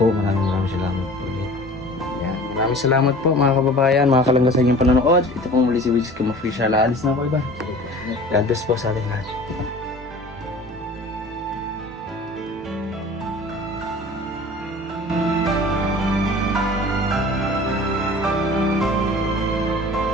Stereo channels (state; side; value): normal; both; correlation 0.43